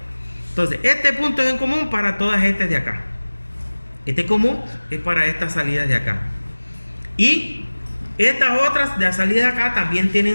Entonces, este punto es en común para todas estas de acá. Este común es para estas salidas de acá. Y estas otras de las salidas de acá también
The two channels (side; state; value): both; inverted; correlation -1.00